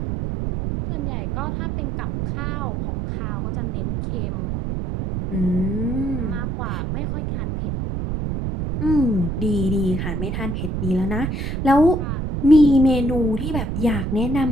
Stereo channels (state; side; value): noise; right; rumble, 2 dB below the sound